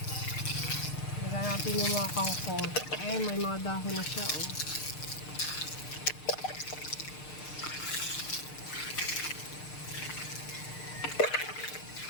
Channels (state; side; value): late; right; 6.6 ms